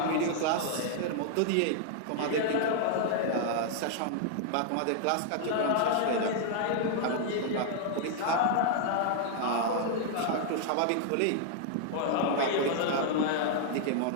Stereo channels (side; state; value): both; different; correlation 0.00